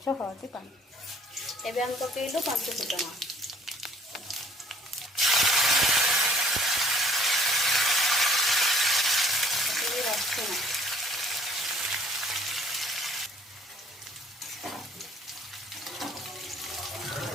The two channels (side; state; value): both; normal; correlation 0.56